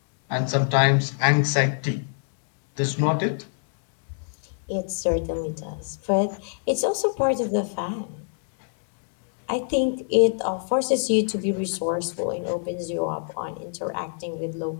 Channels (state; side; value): silent; right; digital silence